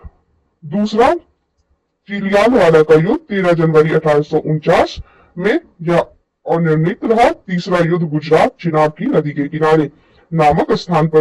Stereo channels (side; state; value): both; identical; correlation 1.00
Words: दूसरा चिलियालवाला का युद्ध 13 जनवरी 1849 में यह अनिर्णित रहा। तीसरा युद्ध गुजरात चिनाब की नदी के किनारे नामक स्थान